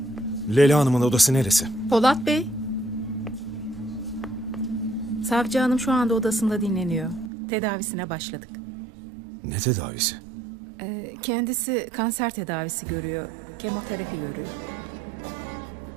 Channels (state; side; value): drops out; left; at 7.3 s